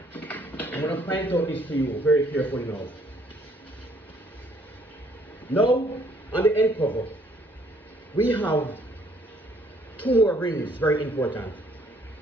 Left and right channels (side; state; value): both; normal; correlation 0.63